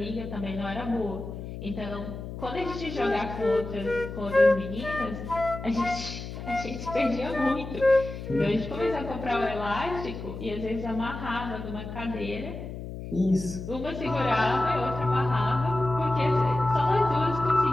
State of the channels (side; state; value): left; noise; hum, 9 dB below the sound